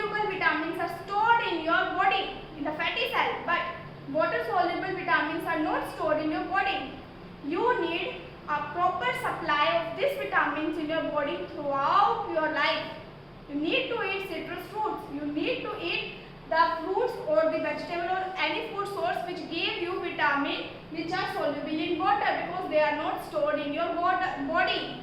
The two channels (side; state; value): both; identical; correlation 1.00